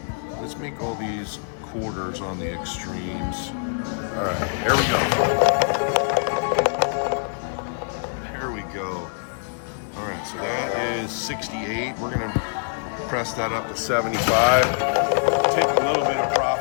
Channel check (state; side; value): silent; right; 62 dB below the other